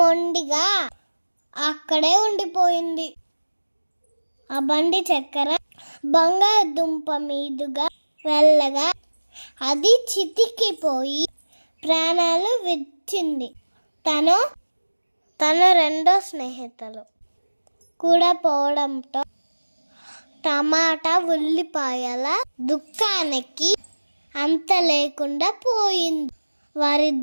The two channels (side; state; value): both; inverted; correlation -1.00